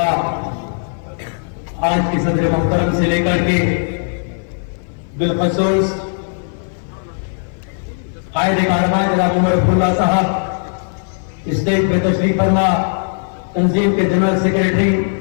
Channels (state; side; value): silent; right; 56 dB below the other